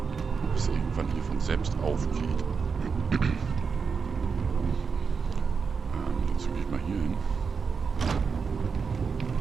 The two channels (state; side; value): quieter; left; 5.6 dB